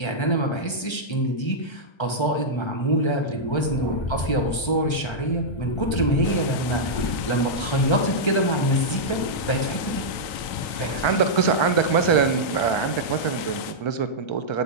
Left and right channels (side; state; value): right; late; 1.3 ms